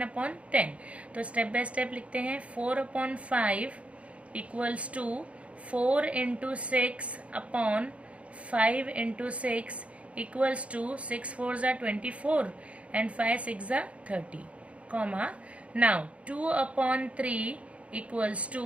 तो स्टेप बाय स्टेप लिखते हैं. 4/5 equals to 4 into 6/5 into 6 equals to 6 4s are 24 and 5 6s are 30, comma. Now 2/3 equals to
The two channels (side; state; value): left; late; 0.063 ms